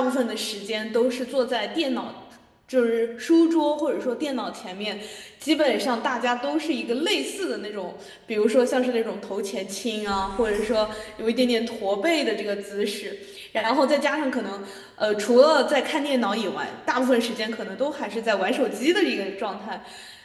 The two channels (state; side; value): identical; both; correlation 1.00